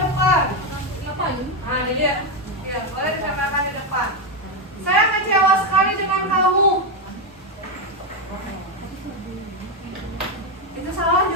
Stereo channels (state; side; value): normal; both; correlation 0.07